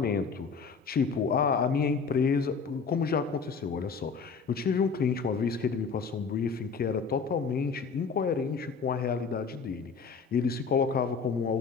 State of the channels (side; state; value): right; quieter; 5.3 dB